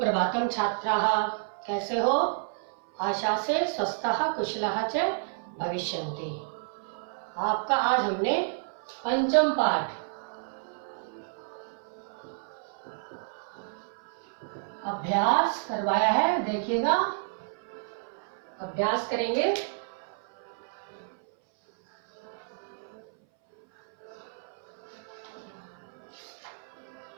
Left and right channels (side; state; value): left; silent; 58 dB below the other